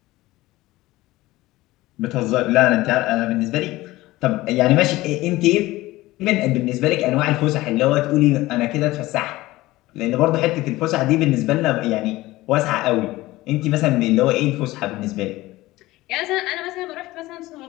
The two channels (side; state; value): right; quieter; 18.3 dB